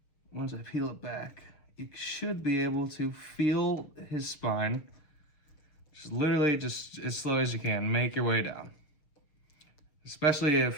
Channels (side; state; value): right; late; 6.6 ms